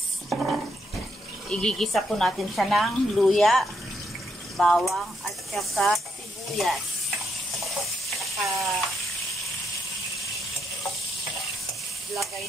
Igigisa po natin siya ng luya, bawang at saka sibuyas. Lagay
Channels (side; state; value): both; normal; correlation 0.78